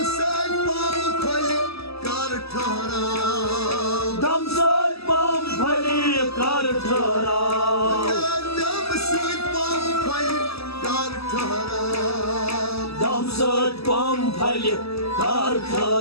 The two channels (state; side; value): late; right; 0.78 ms